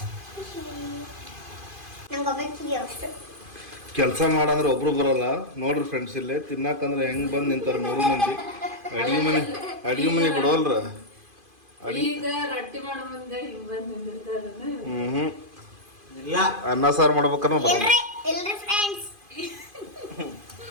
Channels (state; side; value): late; left; 2.5 ms